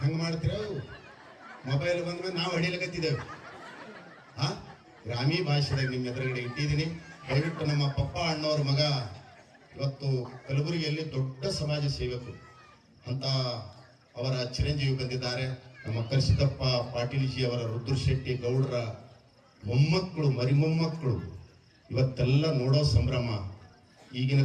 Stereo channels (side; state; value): both; identical; correlation 1.00